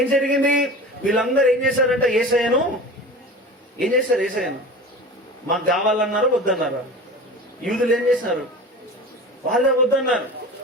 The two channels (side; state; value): both; normal; correlation 0.34